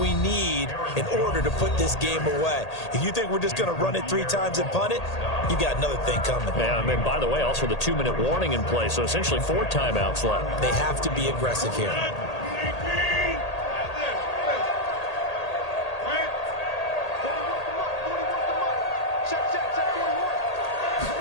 need in order to put this game away. If you think we're just going to run it 3 times and punt it, you got another thing coming. Yeah, I mean, by the way, also the 2-minute warning in play, so essentially 4 timeouts left. They have to be aggressive here.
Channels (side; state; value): right; late; 1.8 ms